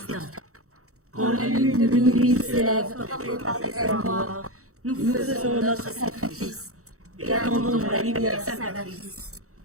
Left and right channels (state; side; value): late; left; 0.64 ms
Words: Quand la lune de minuit s'élève portée par des ailes noires, nous faisons notre sacrifice et attendons la lumière salvatrice.